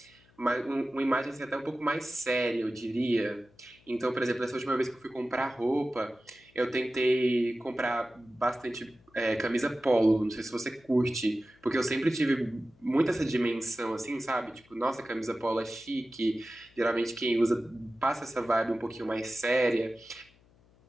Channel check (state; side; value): noise; left; hum, 30 dB below the sound